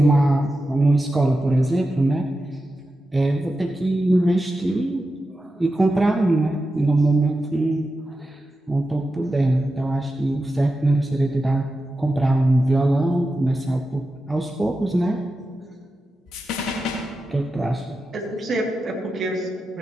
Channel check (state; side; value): normal; both; correlation 0.91